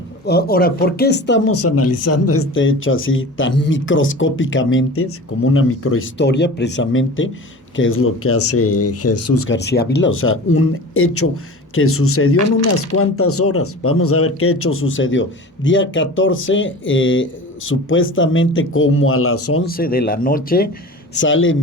ahora, ¿por qué estamos analizando este hecho así tan microscópicamente, como una microhistoria precisamente, que es lo que hace Jesús García Ávila? O sea, un hecho que sucedió en unas cuantas horas. Vamos a ver qué hecho sucedió. Día 14, supuestamente como a las 11 de la noche, sale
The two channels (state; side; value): normal; both; correlation 0.36